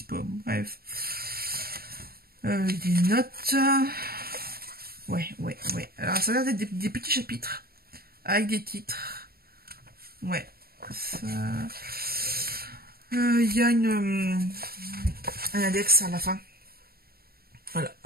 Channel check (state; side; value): late; left; 0.44 ms